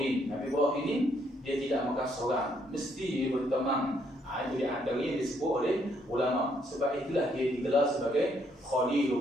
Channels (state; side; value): normal; both; correlation 0.71